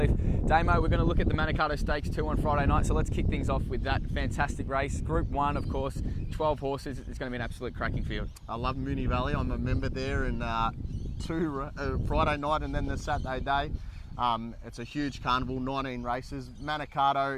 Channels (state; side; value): identical; both; correlation 1.00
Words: Damo, we're going to look at the Manikato Stakes 2 on Friday night, so let's kick things off with that fantastic race. Group 1, of course, 12 horses. It's going to be an absolute cracking field. I love Moonee Valley. I'm a member there, and Friday night and then the Saturday day. It's a huge carnival, 19 races.